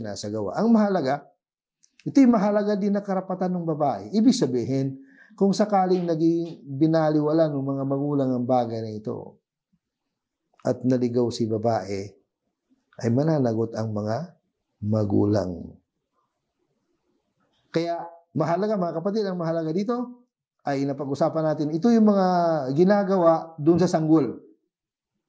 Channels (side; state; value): both; identical; correlation 1.00